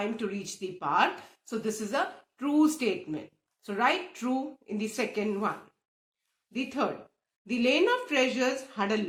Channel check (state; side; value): identical; both; correlation 1.00